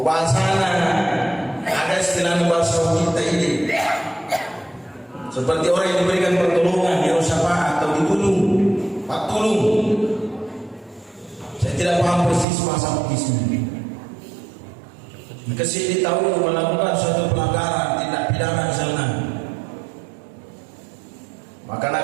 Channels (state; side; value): drops out; left; at 12.5 s